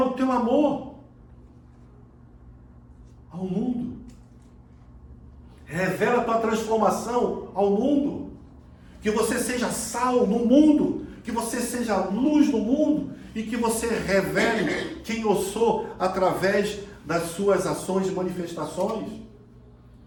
o teu amor ao mundo. Revela a tua transformação ao mundo. Que você seja sal no mundo, que você seja luz no mundo e que você revele quem eu sou através das suas ações e manifestações,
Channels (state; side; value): identical; both; correlation 1.00